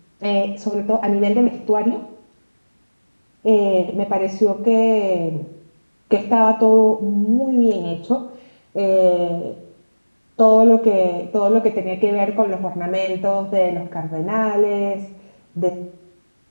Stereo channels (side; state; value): both; inverted; correlation -1.00